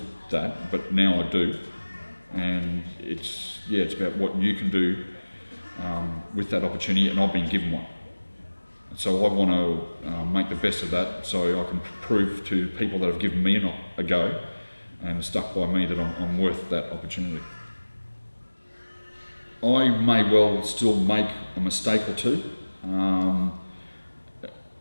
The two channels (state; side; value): inverted; both; correlation -1.00